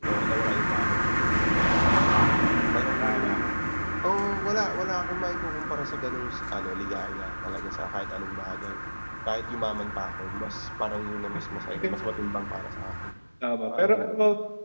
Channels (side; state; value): both; inverted; correlation -1.00